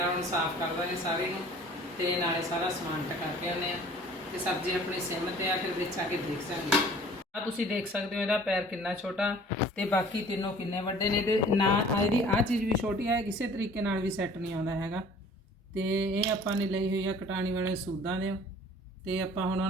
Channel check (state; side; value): normal; both; correlation 0.50